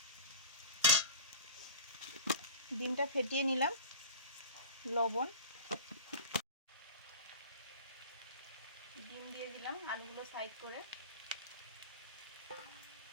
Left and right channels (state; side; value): inverted; both; correlation -0.37